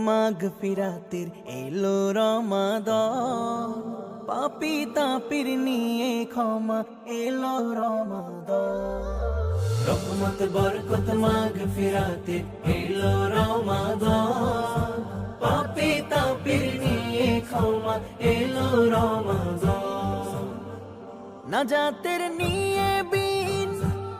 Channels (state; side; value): identical; both; correlation 1.00